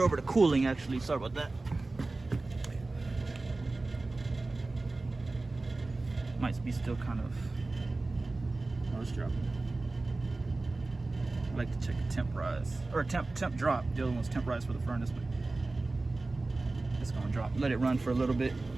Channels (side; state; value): left; quieter; 3.2 dB